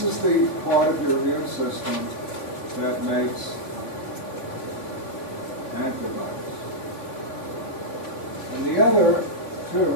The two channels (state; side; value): late; right; 3.5 ms